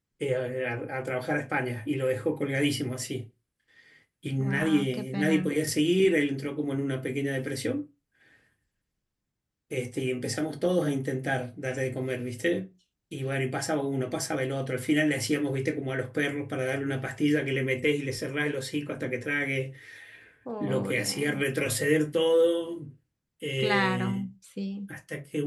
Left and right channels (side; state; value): both; identical; correlation 1.00